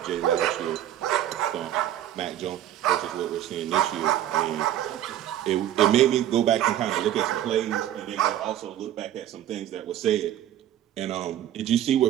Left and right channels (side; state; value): left; quieter; 11.9 dB